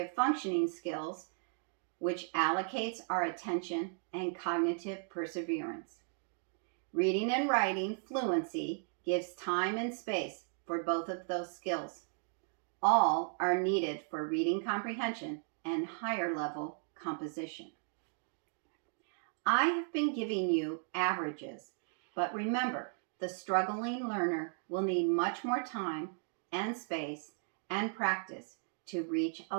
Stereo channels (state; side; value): silent; left; 54 dB below the other